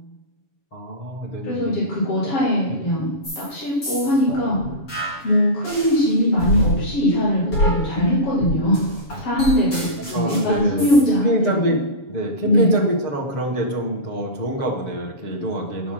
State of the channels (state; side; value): late; right; 7.2 ms